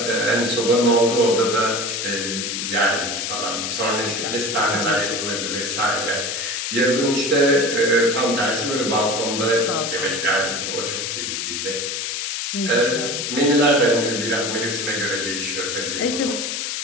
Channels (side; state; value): left; noise; hiss, 3 dB below the sound